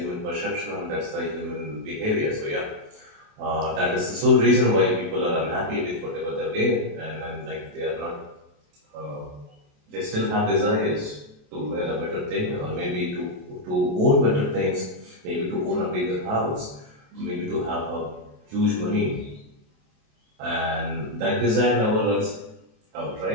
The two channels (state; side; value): late; left; 28 ms